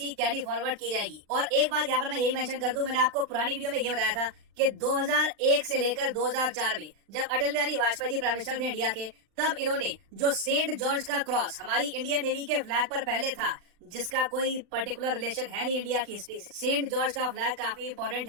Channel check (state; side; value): late; left; 39 ms